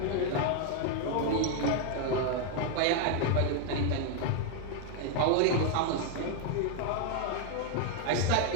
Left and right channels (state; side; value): different; both; correlation 0.00